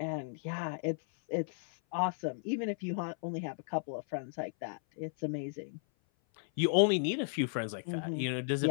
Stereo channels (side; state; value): right; silent; 55 dB below the other